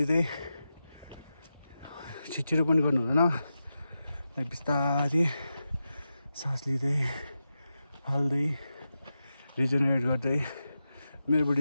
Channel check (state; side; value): inverted; both; correlation -0.90